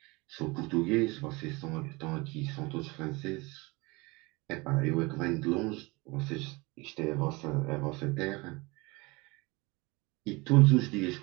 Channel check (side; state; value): left; quieter; 25.1 dB